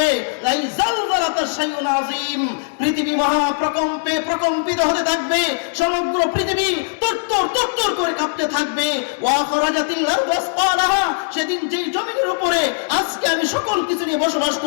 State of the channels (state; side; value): silent; right; digital silence